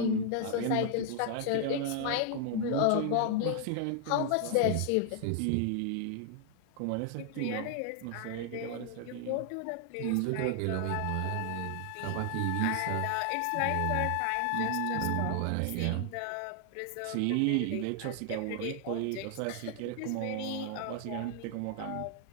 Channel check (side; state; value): both; different; correlation 0.00